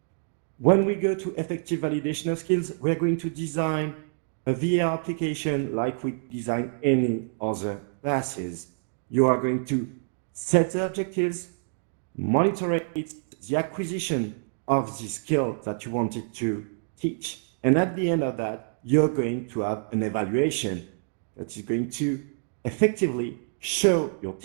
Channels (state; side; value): silent; left; digital silence